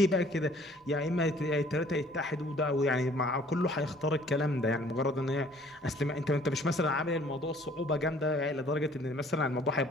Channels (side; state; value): both; normal; correlation 0.56